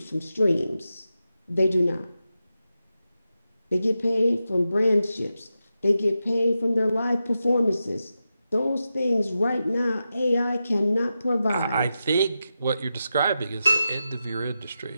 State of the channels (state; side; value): inverted; both; correlation -0.90